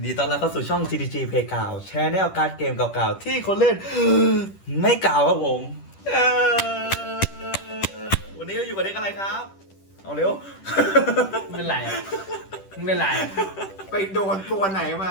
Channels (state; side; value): late; right; 10 ms